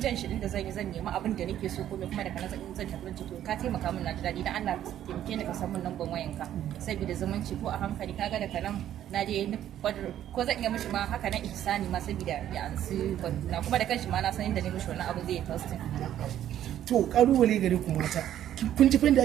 jan shi din da zan yi zan nemi abin da nake so kuma daga nan zan tafi to ka taimaka min na ji dadi dan Allah taimake ni ka san min lambar wayanka saboda zumunci ko a hankali kaga daga nan na je ko zan iya mishi ma haka nan ihsani ma saboda ya ansi banduna kuma da kanshi ma na san inda ne mishi wannan abu zai yi testing. To kalubale gare ku mata kun ji fa da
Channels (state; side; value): quieter; left; 11.4 dB